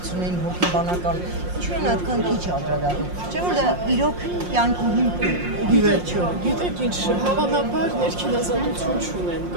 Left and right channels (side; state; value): left; late; 5.6 ms